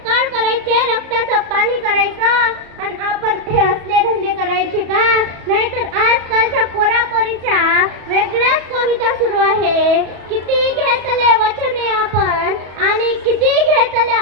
कळ करायचे, रक्ताचं पाणी करायचं, आणि आपण हे असले धंदे करायचे का. नाहीतर आजकालच्या पोरापोरीच्या वेगळ्याच कविता सुरू आहे. किती घेतले वचने आपण आणि किती घेतल्या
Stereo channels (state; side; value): late; left; 34 ms